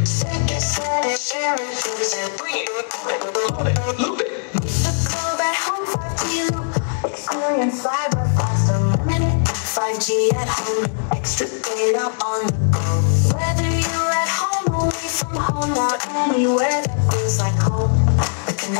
Bring it, love it, loop it. Experience cyber fast, unlimited 5G at home, extra data on the go. Whether you're at home, away from home, or anywhere that feels like home, the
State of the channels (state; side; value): silent; right; digital silence